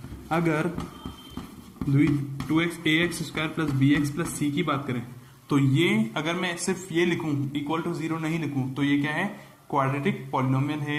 अगर 2x ax square plus b x plus c की बात करें तो ये अगर मैं सिर्फ ये लिखूं, इक्वल टू 0 नहीं लिखूं, तो ये क्या है? क्वाड्रेटिक पॉलिनोमियल है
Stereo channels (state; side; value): identical; both; correlation 1.00